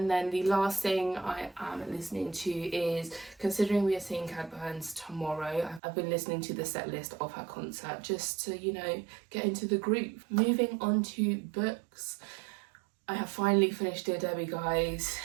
then the last thing I am listening to is, considering we are seeing Cat Burns tomorrow, I've been listening to the set list of her concert just to, you know, get into the groove. Moving on to books. I have finally finished Dear Debbie, guys.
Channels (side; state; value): left; drops out; at 5.8 s